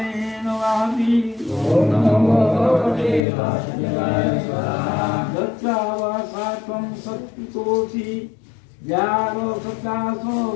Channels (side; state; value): right; drops out; at 3.2 s